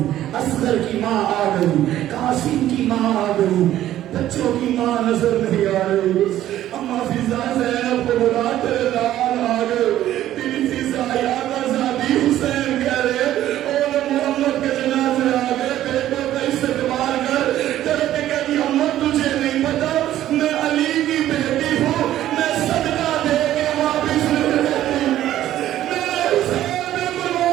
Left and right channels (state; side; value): quieter; left; 12.9 dB